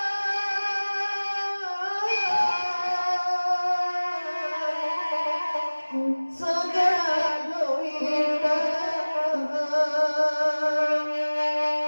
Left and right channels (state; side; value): inverted; both; correlation -1.00